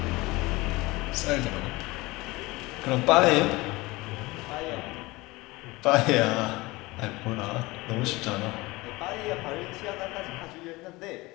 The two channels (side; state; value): right; quieter; 21.7 dB